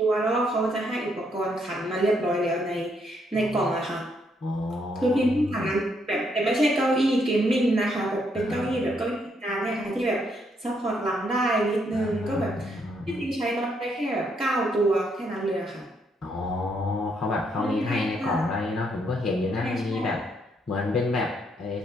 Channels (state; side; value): normal; both; correlation 0.74